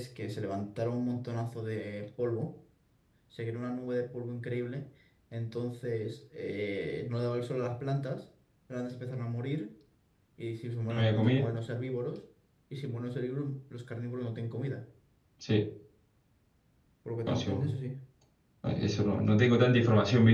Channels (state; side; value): identical; both; correlation 1.00